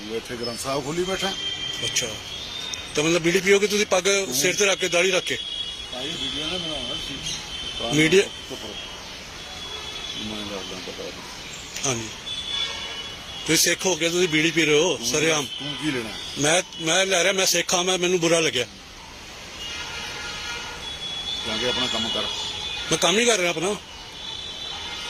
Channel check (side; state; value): both; identical; correlation 1.00